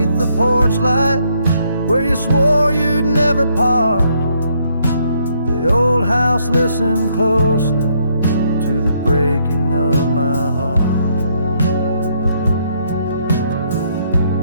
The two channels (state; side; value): inverted; both; correlation -0.71